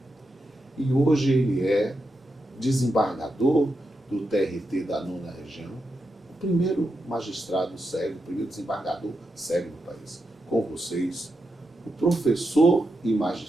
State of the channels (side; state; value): both; normal; correlation 0.86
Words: E hoje ele é desembargador do TRT da 9ª Região, o primeiro magistrado sério, o primeiro desembargador sério do país. Com vocês, o professor e